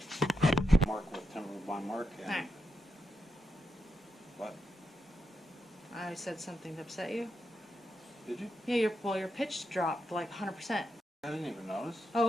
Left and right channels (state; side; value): normal; both; correlation 0.85